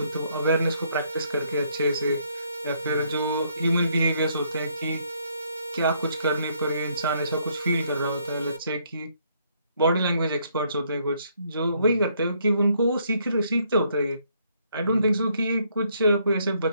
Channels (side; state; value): both; inverted; correlation -0.70